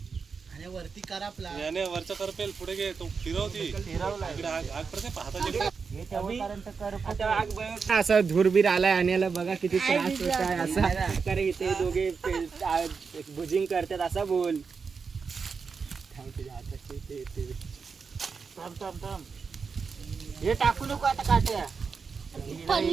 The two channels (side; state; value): left; quieter; 5.4 dB